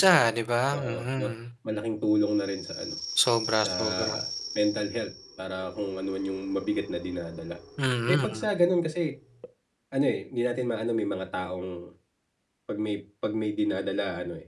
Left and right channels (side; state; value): both; identical; correlation 1.00